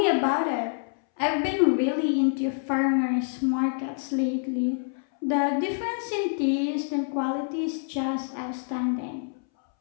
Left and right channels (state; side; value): silent; right; 61 dB below the other